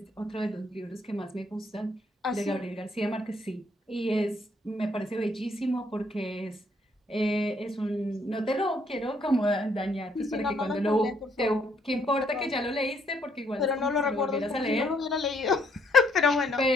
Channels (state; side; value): normal; both; correlation 0.69